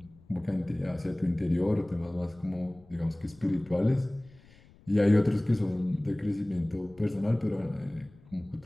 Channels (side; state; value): left; noise; rumble, 25 dB below the sound